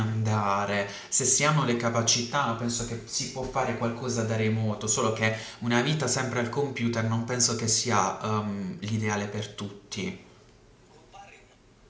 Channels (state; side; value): identical; both; correlation 1.00